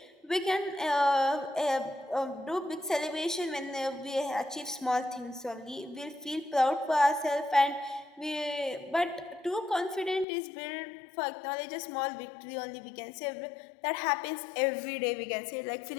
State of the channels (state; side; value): drops out; right; at 10.2 s